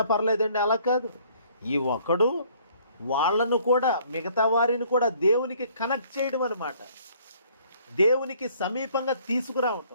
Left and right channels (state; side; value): inverted; both; correlation -0.60